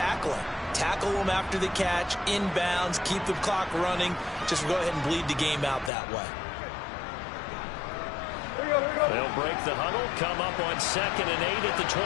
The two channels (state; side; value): drops out; right; at 5.9 s